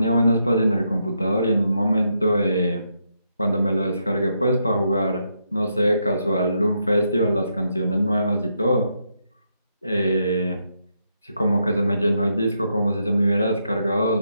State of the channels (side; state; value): both; inverted; correlation -0.79